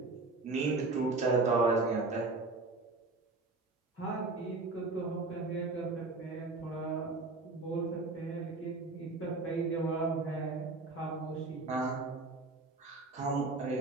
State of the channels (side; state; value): left; quieter; 3.5 dB